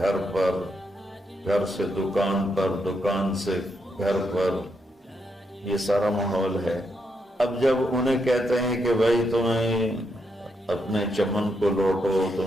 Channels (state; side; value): normal; both; correlation 0.80